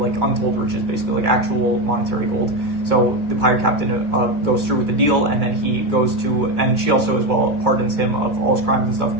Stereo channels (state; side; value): late; left; 2.2 ms